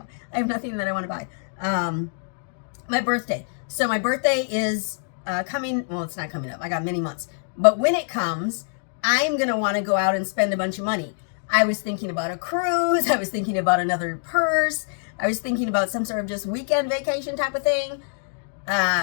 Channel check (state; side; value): silent; right; digital silence